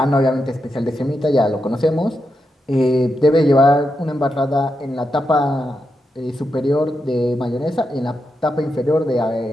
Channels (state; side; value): normal; both; correlation 0.86